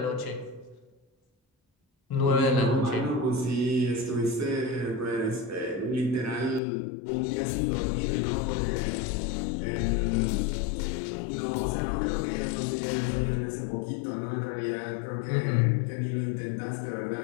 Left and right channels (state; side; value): drops out; right; at 6.6 s